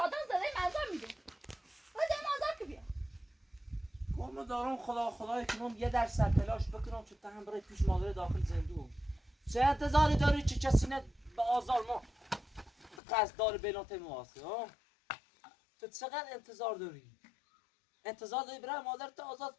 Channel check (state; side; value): drops out; right; at 13.0 s